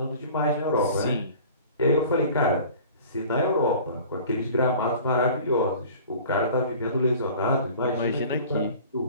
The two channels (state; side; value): inverted; both; correlation -0.44